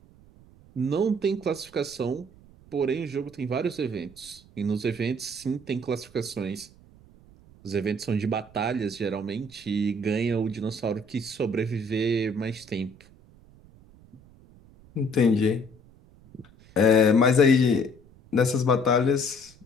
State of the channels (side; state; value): right; noise; rumble, 25 dB below the sound